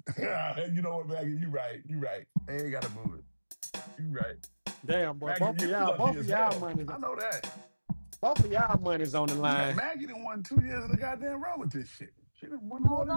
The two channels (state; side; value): inverted; both; correlation -1.00